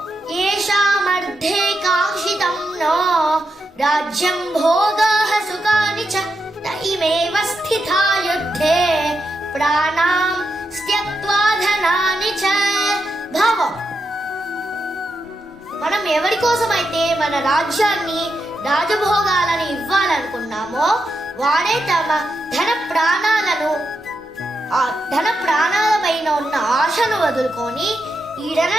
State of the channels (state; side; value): normal; both; correlation 0.85